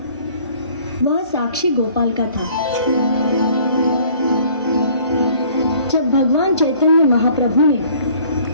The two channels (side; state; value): both; inverted; correlation -0.56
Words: वह साक्षी गोपाल का था। जब भगवान चैतन्य महाप्रभु ने